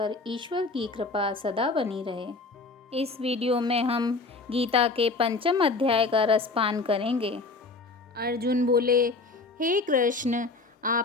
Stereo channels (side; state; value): right; quieter; 3.7 dB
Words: ईश्वर की कृपा सदा बनी रहे। इस वीडियो में हम गीता के 5वें अध्याय का रसपान करेंगे। अर्जुन बोले, हे कृष्ण,